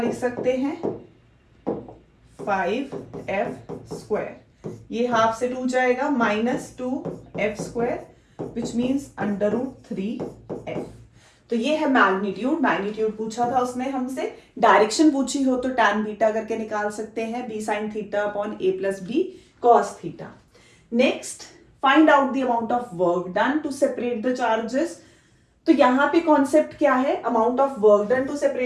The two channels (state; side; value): identical; both; correlation 1.00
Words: सकते हैं 5f स्क्वायर, ये हाफ से 2 जाएगा minus 2f square which means under root 3f। तो ये है मैग्नीट्यूड, मैग्नीट्यूड पूछा था उसने हमसे, डायरेक्शन पूछी हो तो tan बीटा करके निकाल सकते हैं, b sin theta upon a plus b cos theta. Next, find out the amount of work done to separate the charges. तो यहाँ पे कॉन्सेप्ट क्या है, amount of work done to